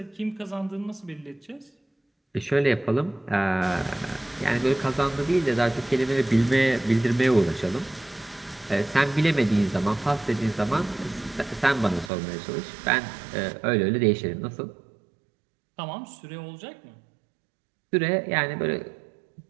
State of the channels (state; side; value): drops out; left; at 12.1 s